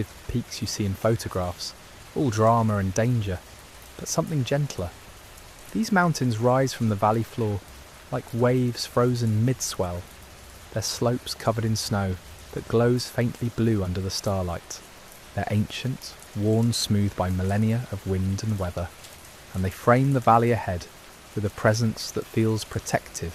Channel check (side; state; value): both; identical; correlation 1.00